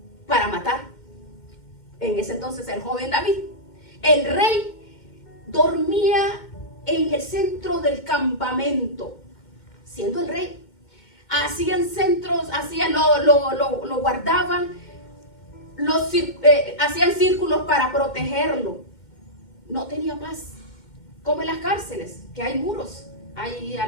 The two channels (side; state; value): right; late; 2.1 ms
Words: para matar. En ese entonces el joven David. El rey dormía en el centro del campamento, siendo el rey. Hacían centros, lo guardaban, hacían círculos para protegerlo. No tenía paz. Como en las cárceles, que hay muros, hay